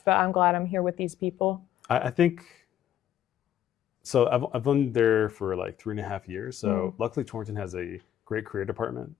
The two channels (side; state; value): right; quieter; 11.0 dB